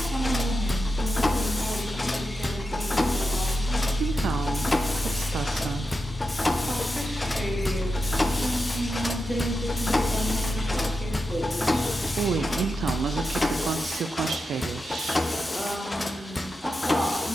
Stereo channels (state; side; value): normal; both; correlation 0.89